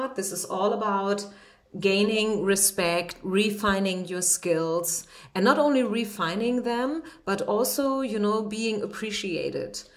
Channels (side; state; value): both; identical; correlation 1.00